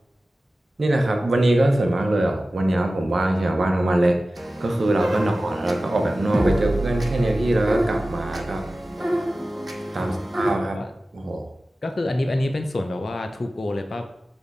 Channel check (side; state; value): both; normal; correlation 0.96